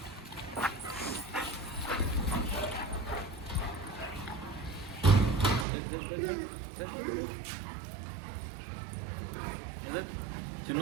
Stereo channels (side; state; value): left; drops out; at 5.7 s